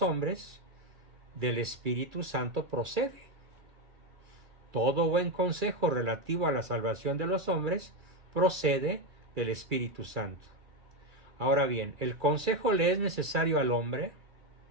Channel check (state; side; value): late; left; 2.3 ms